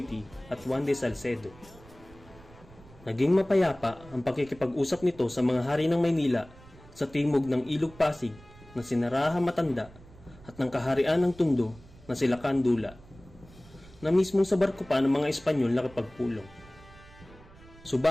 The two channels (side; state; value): right; noise; rumble, 22 dB below the sound